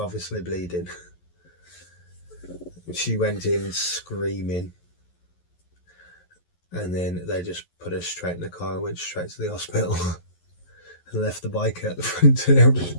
bleeding. She went in screaming, and then they just put her straight in the car and went straight to the hospital and left the bike at the front and everything.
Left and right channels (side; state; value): right; late; 11 ms